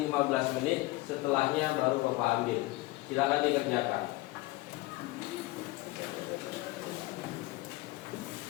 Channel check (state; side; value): quieter; right; 19.8 dB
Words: 15 menit. Setelahnya baru Bapak ambil. Silakan dikerjakan.